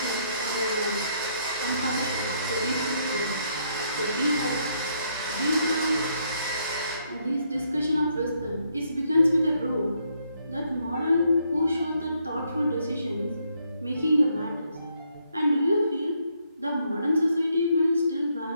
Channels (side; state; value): both; inverted; correlation -0.73